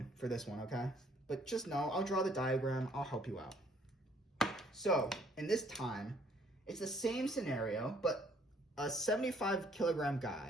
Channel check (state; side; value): normal; both; correlation 0.63